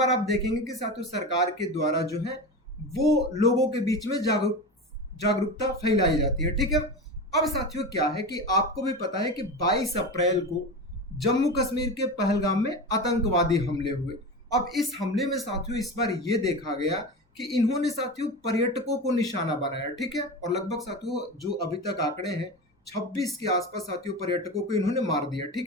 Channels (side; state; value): both; normal; correlation 0.25